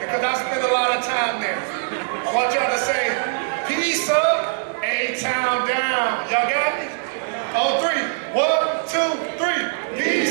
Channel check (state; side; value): silent; left; 56 dB below the other